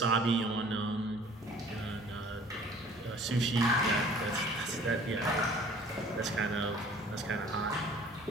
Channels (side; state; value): both; normal; correlation 0.51